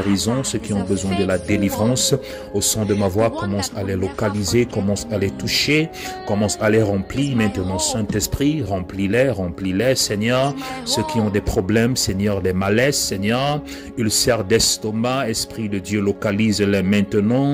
ceux qui ont besoin de la délivrance, Au son de ma voix, commence à les localiser, commence à les toucher, commence à les remplir. Maintenant, Saint-Esprit, remplis-les, Seigneur. Ceux qui ont des problèmes, Seigneur, des malaises, Seigneur, ulcères d'estomac, Esprit de Dieu, localise-les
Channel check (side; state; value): both; identical; correlation 1.00